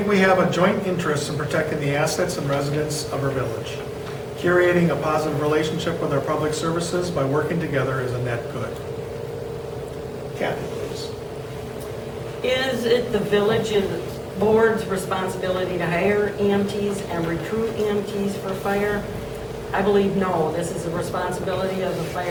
we have a joint interest in protecting the assets and residents of our village. Curating a positive relationship with our public services by working together is a net good. Kathy, please. Is it the village's board's responsibility to hire EMTs and recruit EMTs for fire? I believe no. This is the responsibility of the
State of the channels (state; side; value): identical; both; correlation 1.00